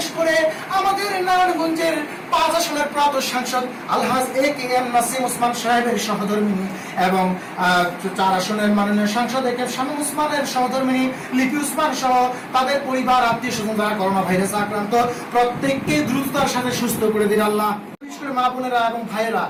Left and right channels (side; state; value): both; identical; correlation 1.00